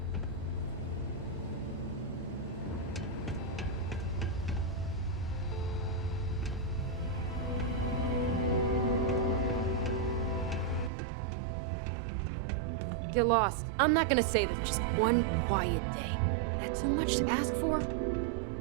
Get lost. I'm not gonna say this. Just one quiet day. That too much to ask for?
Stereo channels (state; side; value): drops out; left; at 10.9 s